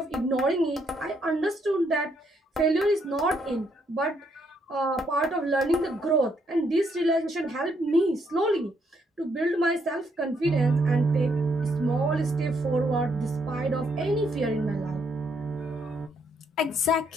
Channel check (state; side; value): normal; both; correlation 0.73